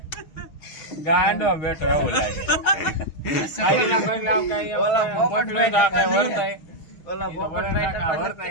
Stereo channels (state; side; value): late; right; 5.7 ms